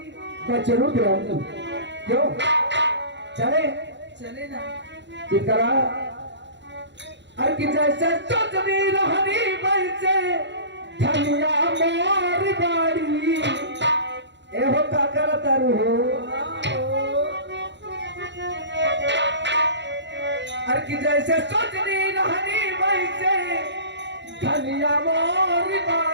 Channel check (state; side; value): late; left; 0.52 ms